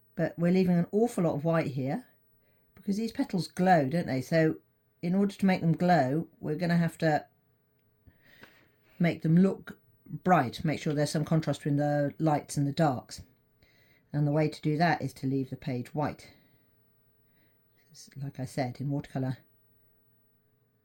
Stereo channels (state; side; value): identical; both; correlation 1.00